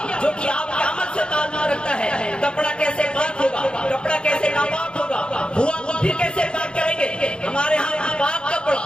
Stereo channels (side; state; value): right; late; 0.053 ms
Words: جو کہ آپ کے عمل سے تعلق رکھتا ہے۔ کپڑا کیسے پاک ہوگا، کپڑا کیسے ناپاک ہوگا، ہوا تو پھر کیسے پاک کریں گے۔ ہمارے ہاں پاک